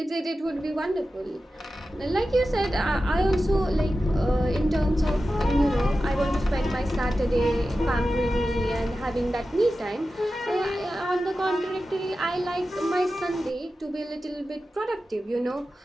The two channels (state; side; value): normal; both; correlation 0.93